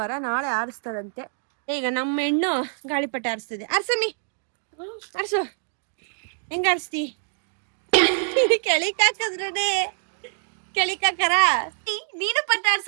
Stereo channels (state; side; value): silent; left; 62 dB below the other